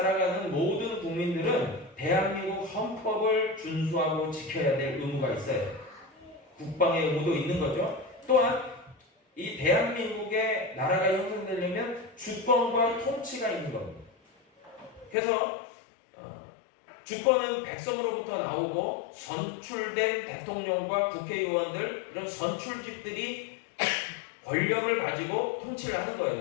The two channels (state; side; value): drops out; right; at 15.2 s